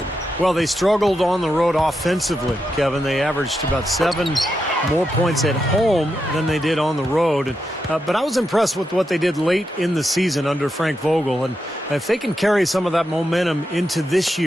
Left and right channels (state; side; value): normal; both; correlation 0.86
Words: Well, they struggled on the road offensively, Kevin. They averaged about 7 more points at home than they did on the road. But I was impressed with what they did late in the season under Frank Vogel. And if they can carry some of that momentum into this